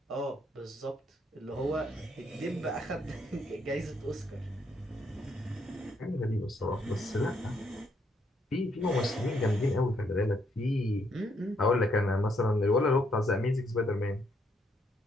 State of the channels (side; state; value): both; normal; correlation 0.73